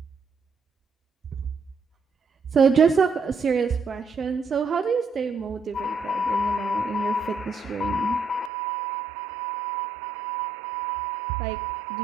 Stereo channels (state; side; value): drops out; left; at 8.5 s